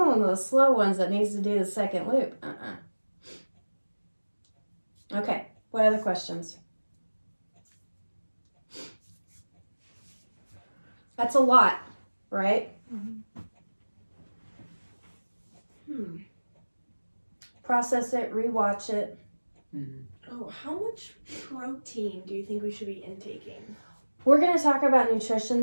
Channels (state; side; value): inverted; both; correlation -1.00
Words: of the slow ones that needs to do the second loop. Okay, what other questions? That's a lot, right? Process it, rewatch it. Oh, how much protein do you think we should be intaking? We're going to talk about nutrition